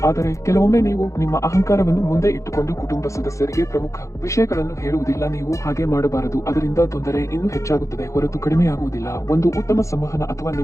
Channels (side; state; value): right; late; 0.15 ms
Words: ಆದರೆ ಕೆಲವೊಮ್ಮೆ ನೀವು ನಿಮ್ಮ ಅಹಂಕಾರವನ್ನು ಮುಂದೆ ಇಟ್ಟುಕೊಂಡು ಕುಟುಂಬ ಸದಸ್ಯರಿಗೆ ಪ್ರಮುಖ ವಿಷಯಗಳನ್ನು ಹೇಳುವುದಿಲ್ಲ. ನೀವು ಹಾಗೆ ಮಾಡಬಾರದು. ಅದರಿಂದ ತೊಂದರೆ ಇನ್ನೂ ಹೆಚ್ಚಾಗುತ್ತದೆ ಹೊರತು ಕಡಿಮೆಯಾಗುವುದಿಲ್ಲ. ಒಂದು ಉತ್ತಮ ಸಂವಹನ ಅಥವಾ